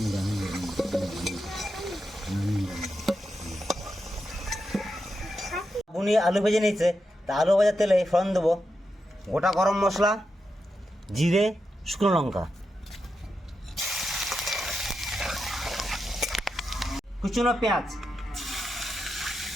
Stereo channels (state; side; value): normal; both; correlation 0.87